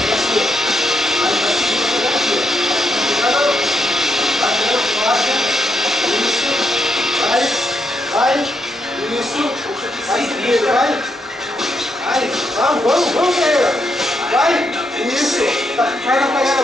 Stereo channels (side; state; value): both; normal; correlation 0.79